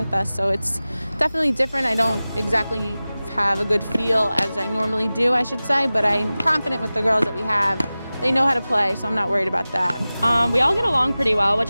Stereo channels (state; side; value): inverted; both; correlation -0.97